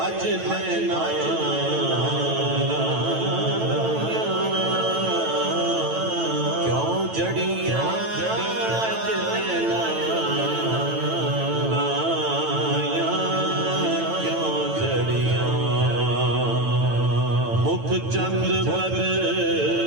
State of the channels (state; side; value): late; left; 9.0 ms